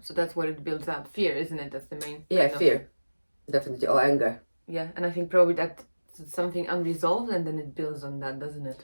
so that's what it builds up. Fear, isn't it? That's the main. Yeah, fear, definitely, or anger. Yeah, and I think probably that's something unresolved, and then it builds on that, doesn't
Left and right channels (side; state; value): both; inverted; correlation -1.00